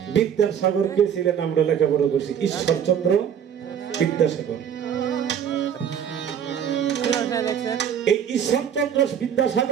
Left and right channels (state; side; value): quieter; left; 8.5 dB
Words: বিদ্যাসাগর কে ছিলেন আমরা লেখাপড়া করছি ঈশ্বরচন্দ্র বিদ্যাসাগর এই ঈশ্বরচন্দ্র